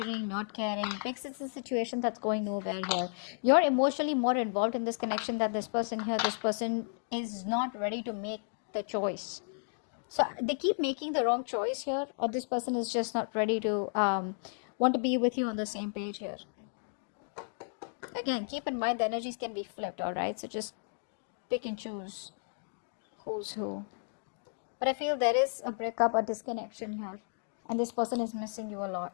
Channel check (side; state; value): right; silent; digital silence